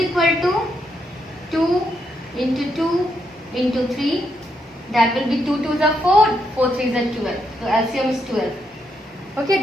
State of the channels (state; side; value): normal; both; correlation 0.79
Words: to 2 into 2 into 3. That will be 2 2s are 4, 4 3s are 12. So LCM is 12. Okay,